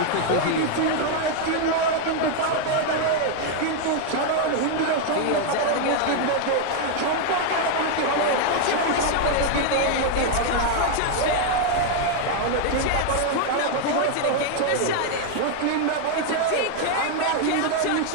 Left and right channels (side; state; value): both; different; correlation 0.00